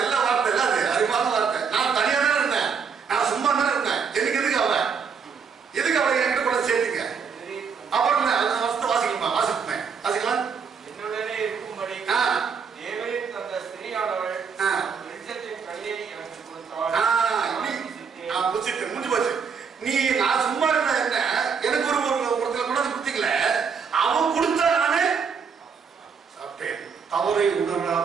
வார்த்தை இல்ல அது, அறிவான வார்த்தை. நான் தனியா தானே இருந்தேன், நான் சும்மா தானே இருந்தேன், எனக்கு எதுக்கு அவளை என்கிட்ட கூட சேர்த்துக்க. அப்புறம் வாசிக்கலாம். என்னுடனே இருக்கும்படி தேவரீர் தந்த ஸ்திரீயானவள் வெளிச்சத்தின் கையை எனக்கு கொடுத்தாள். முடிஞ்சு போச்சு. நீ நான் சும்மா இருந்த என்ன, எனக்கு ஒருத்தர் கூட கொடுத்தீங்கள, அவன் கொடுத்தா நானே சாப்பிட்டேன். தவறை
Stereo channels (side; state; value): left; quieter; 6.1 dB